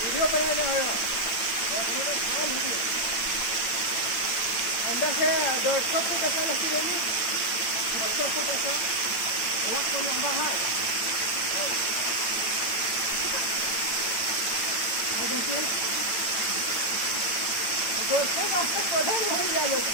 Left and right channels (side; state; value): right; late; 8.7 ms